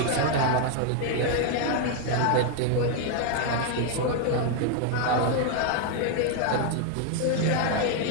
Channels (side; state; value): both; different; correlation 0.00